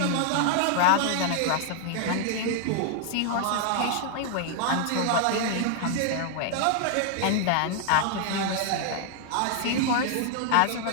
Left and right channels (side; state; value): both; different; correlation 0.00